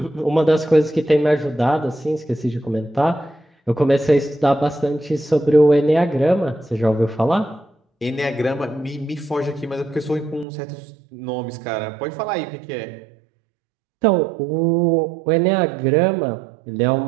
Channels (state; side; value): drops out; left; at 10.5 s